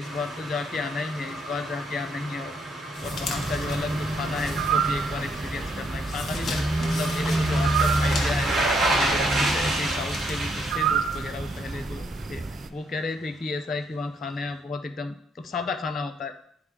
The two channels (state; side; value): normal; both; correlation 0.72